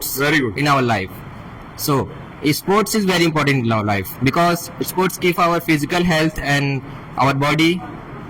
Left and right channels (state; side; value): identical; both; correlation 1.00